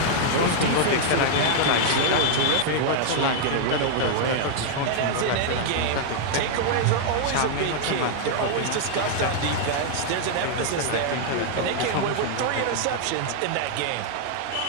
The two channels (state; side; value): different; both; correlation -0.01